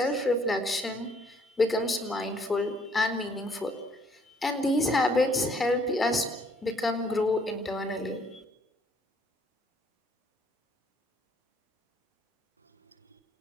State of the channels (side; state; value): both; normal; correlation 0.64